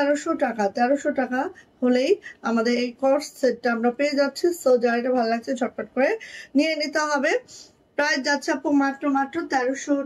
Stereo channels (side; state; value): both; identical; correlation 1.00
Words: টাকা। 1300 টাকা হলেই আমাদের এই কোর্স সেটটা আমরা পেয়ে যাচ্ছি। সো যার এটা ভালো লাগছে ঝটপট করে নিয়ে নিতে হবে। প্রাইস যাচ্ছে আপু মাত্র 1300